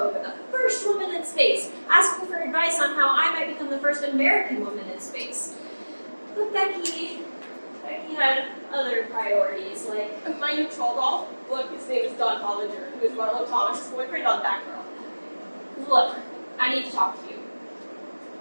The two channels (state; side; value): inverted; both; correlation -1.00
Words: the first woman in space, asking for advice on how I might become the first American woman in space. But Becky had other priorities, like, My new troll doll? Look, his name is Don Hollinger, who is Marlo Thomas' boyfriend on Batgirl. look, I need to talk to you.